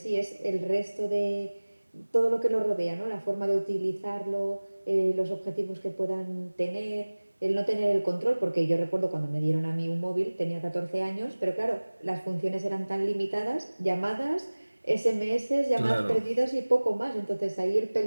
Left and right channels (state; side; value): inverted; both; correlation -1.00